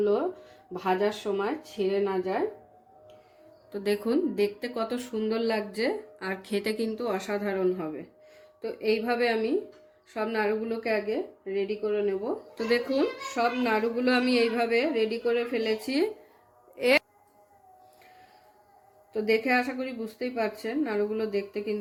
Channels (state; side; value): identical; both; correlation 1.00